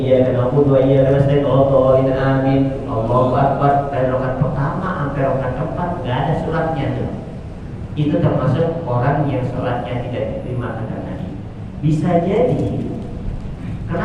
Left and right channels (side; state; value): both; identical; correlation 1.00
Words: iyyaka na'budu wa iyyaka nasta'in, amin. Allahu akbar. Dari rakaat pertama sampai rakaat keempat enggak ada suratnya tuh. Itu termasuk orang yang sholatnya tidak diterima kata Nabi. Bisa jadi